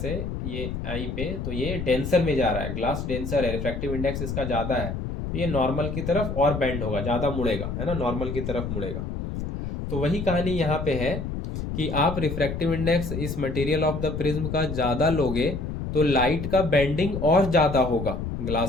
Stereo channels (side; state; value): left; noise; rumble, 5 dB below the sound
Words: ये आई पे तो ये डेंसर में जा रहा है, ग्लास डेंसर है, रिफ्रैक्टिव इंडेक्स इसका ज़्यादा है, तो ये नॉर्मल की तरफ और बेंड होगा, ज़्यादा मुड़ेगा, है ना, नॉर्मल की तरफ मुड़ेगा। तो वही कहानी यहाँ पे है कि आप रिफ्रैक्टिव इंडेक्स इस मटेरियल ऑफ द प्रिज्म का ज्यादा लोगे तो लाइट का बेंडिंग और ज्यादा होगा